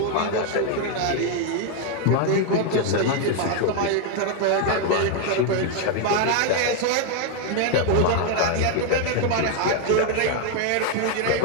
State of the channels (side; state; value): both; different; correlation 0.01